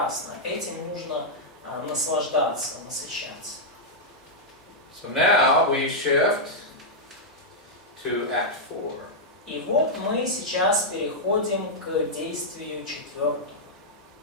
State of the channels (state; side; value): normal; both; correlation -0.06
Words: этим нужно наслаждаться, насыщаться. So now we shift to Act 4. И вот мы сейчас переходим к действию 4.